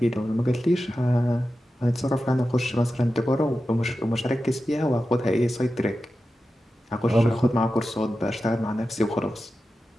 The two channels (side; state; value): both; normal; correlation 0.92